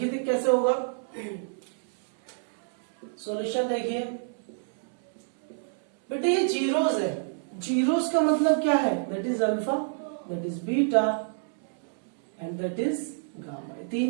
कैसे होगा। सॉल्यूशन देखिए, बेटा ये जीरोस है, जीरोस का मतलब क्या है, that is alpha, that is beta and that is gamma.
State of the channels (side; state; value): left; silent; 59 dB below the other